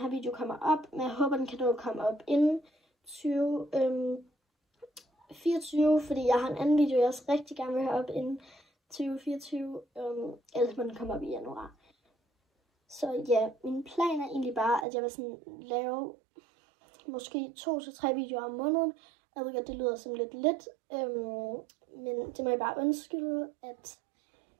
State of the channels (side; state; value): left; drops out; at 14.9 s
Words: her video kommer op, men jeg håber, den kan nå at komme op inden 2024, fordi jeg har en anden video, jeg også rigtig gerne vil have op inden 2024, ellers må den komme op i januar. Så ja, min plan er egentlig bare, at jeg vil sådan lave måske 2 til 3 videoer om måneden. Jeg ved godt, det lyder som lidt, men det må jeg bare undskylde, at